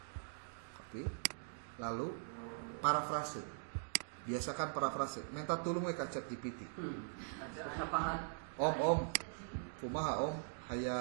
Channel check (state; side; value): silent; left; digital silence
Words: Copy. Lalu parafrase. Biasakan parafrase. Minta tulung we ka ChatGPT. Om, kumaha Om